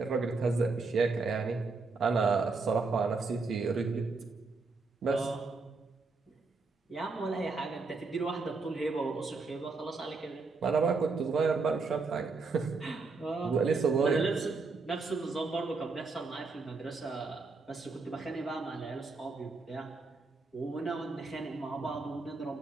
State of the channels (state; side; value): quieter; left; 4.1 dB